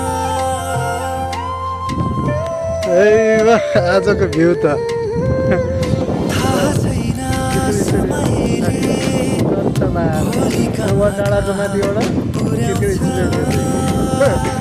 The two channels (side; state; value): both; identical; correlation 1.00